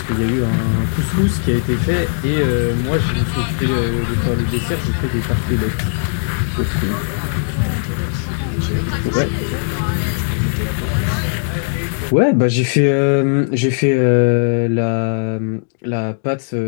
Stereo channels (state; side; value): silent; right; digital silence